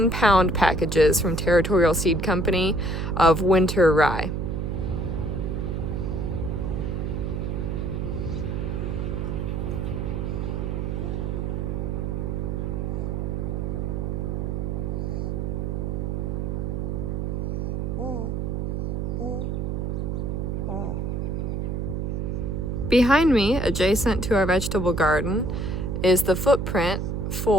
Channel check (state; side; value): noise; right; hum, 1 dB below the sound